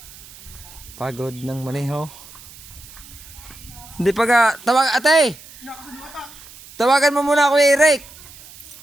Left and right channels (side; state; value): right; noise; hiss, 19 dB below the sound